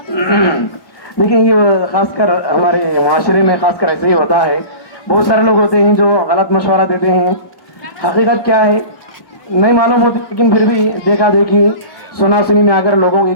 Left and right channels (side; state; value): right; late; 1.1 ms